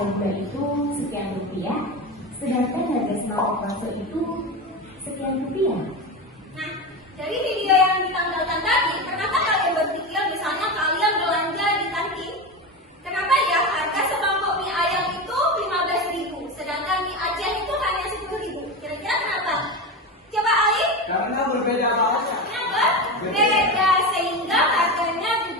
gula itu sekian rupiah, sedangkan harga sembako konsul itu sekian rupiah? Nah, dari video yang ditampilkan tadi, kenapa kalian berpikir misalnya kalian belanja di kantin? Kenapa ya harga semangkok mie ayam itu 15.000, sedangkan mie Aceh itu hanya 10.000? Kira-kira kenapa? Coba Ali. karena berbeda banget. Kenapa? Beda, sehingga harganya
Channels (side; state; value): both; normal; correlation 0.21